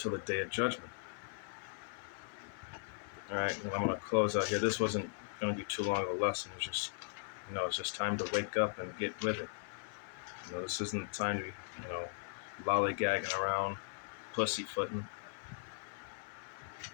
the day of judgment. All right, well, I'm going to close out here. This wasn't going to be too long of a lesson. It was just, it's just time to wake up and get with it. This isn't the time to be, lollygagging around, pussyfooting.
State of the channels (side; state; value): right; silent; 52 dB below the other